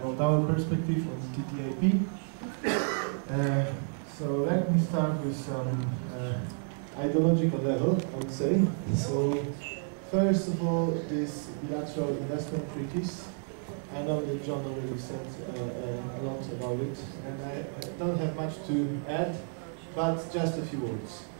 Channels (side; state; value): left; silent; 57 dB below the other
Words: our perspective on TTIP. So let me start with some ideological level, I would say. So first of all, this bilateral investment treaties. I know that John already said a lot about it, and I don't have much to add, but just a few words.